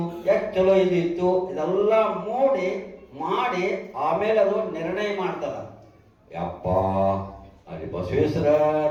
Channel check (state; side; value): identical; both; correlation 1.00